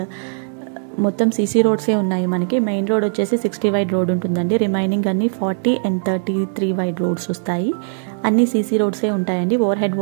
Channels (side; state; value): left; silent; 65 dB below the other